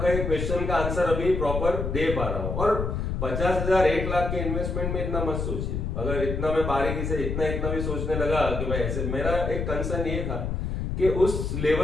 एक क्वेश्चन का आंसर अभी प्रॉपर दे पा रहा हूं। और 50,000 1 लाख के इन्वेस्टमेंट में इतना मत सोचिए। अगर इतना मैं बारीकी से इतना भी सोचने लगा कि भाई ऐसे, मेरा एक कंसर्न ये था कि उस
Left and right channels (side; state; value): left; noise; rumble, 2 dB below the sound